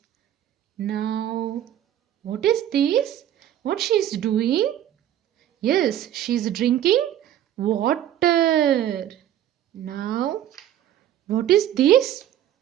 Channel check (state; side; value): quieter; left; 11.5 dB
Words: Now, what is this? What she is doing? Yes, she is drinking water. Now, what is this?